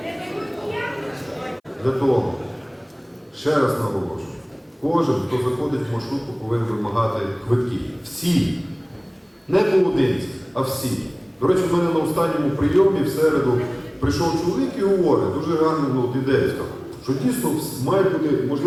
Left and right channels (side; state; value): both; identical; correlation 1.00